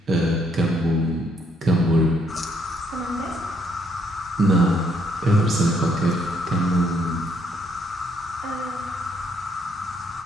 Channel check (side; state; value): both; normal; correlation 0.70